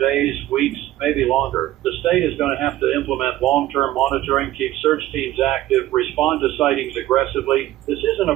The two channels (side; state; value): left; quieter; 14.8 dB